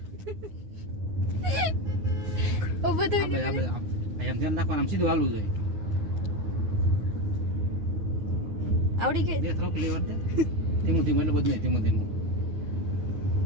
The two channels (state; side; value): late; left; 9.5 ms